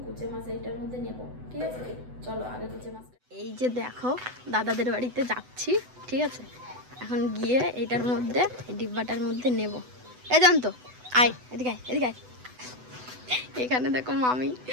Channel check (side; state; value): left; late; 8.0 ms